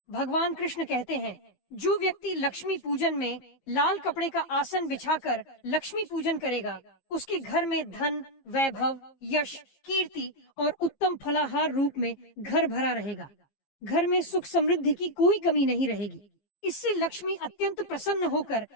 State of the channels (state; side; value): late; right; 15 ms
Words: भगवान कृष्ण कहते हैं, जो व्यक्ति लक्ष्मी पूजन में लाल कपड़े का आसन बिछाकर लक्ष्मी पूजन करेगा, उसके घर में धन, वैभव, यश, कीर्ति और उत्तम फलाहार रूप में घर भरा रहेगा। घर में सुख समृद्धि की कोई कमी नहीं रहेगी। इससे लक्ष्मी अत्यंत प्रसन्न होकर